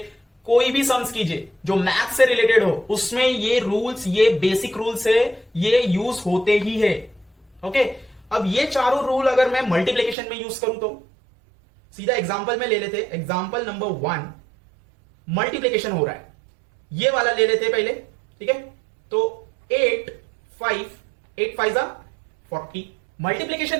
कोई भी सम्स कीजिए जो मैथ से रिलेटेड हो, उसमें ये रूल्स, ये बेसिक रूल्स है, ये यूज होते ही है। ओके, अब ये चारों रूल अगर मैं मल्टीप्लिकेशन में यूज करूं तो सीधा एग्जांपल में ले लेते। एग्जांपल नंबर 1, मल्टीप्लिकेशन हो रहा है, ये वाला ले लेते पहले। ठीक है, तो 8 5 40।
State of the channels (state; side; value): drops out; left; at 10.2 s